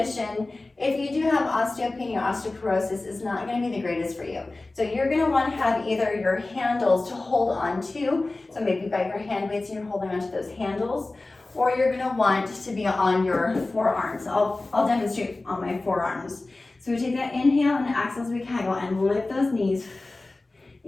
if you do have osteopenia or osteoporosis, is not going to be the greatest for you. So you're going to want to have either your handles to hold on to, so maybe you've got your hand weights and you're holding onto those handles, or you're going to want to be on your forearms. I'll demonstrate on my forearms. So we take that inhale and exhale as we kegel and lift those knees.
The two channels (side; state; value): right; quieter; 3.1 dB